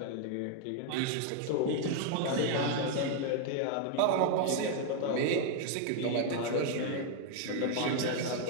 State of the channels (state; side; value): different; both; correlation 0.00